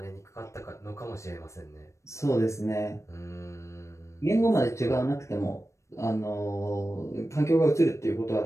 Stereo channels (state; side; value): late; right; 0.14 ms